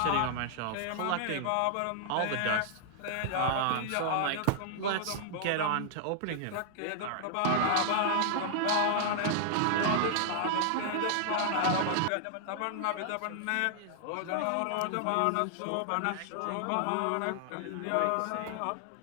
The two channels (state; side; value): different; both; correlation -0.01